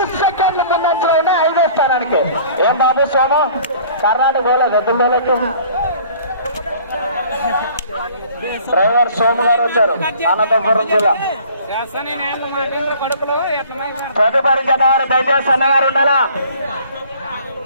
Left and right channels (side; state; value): both; inverted; correlation -0.52